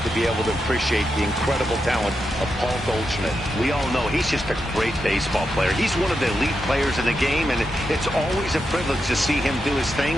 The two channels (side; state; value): both; normal; correlation 0.86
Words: to be able to appreciate the incredible talent of Paul Goldschmidt. We all know he's just a great baseball player. He's one of the elite players in the game, and it's always a privilege to see him do his thing.